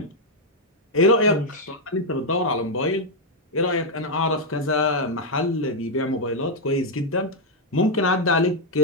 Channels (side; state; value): both; normal; correlation -0.01